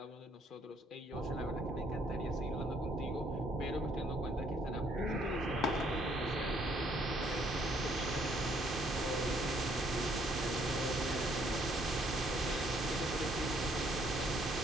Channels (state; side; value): normal; both; correlation 0.67